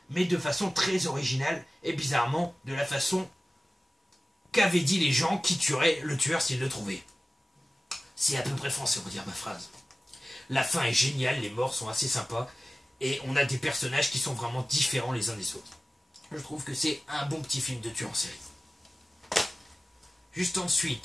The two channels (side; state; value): both; normal; correlation 0.96